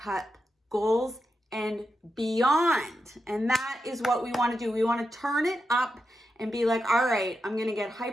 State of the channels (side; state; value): both; normal; correlation 0.87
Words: goals and beyond. And that is what we want to do. We want to turn it up and be like, all right, I'm going to get